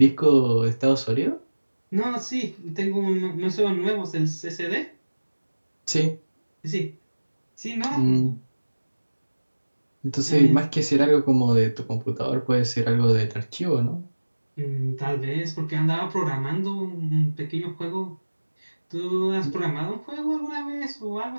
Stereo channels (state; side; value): inverted; both; correlation -1.00